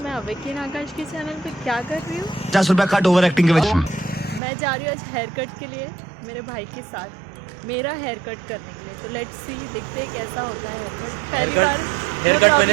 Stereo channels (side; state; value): left; drops out; at 4.4 s